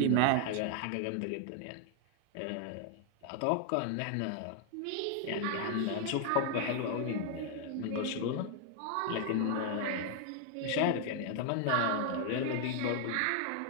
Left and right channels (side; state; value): both; different; correlation 0.00